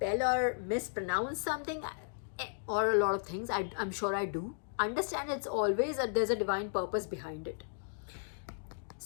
or mispronounce something, or a lot of things, I'm sure I do, understand it's always there's a divine purpose behind it.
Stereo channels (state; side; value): silent; right; digital silence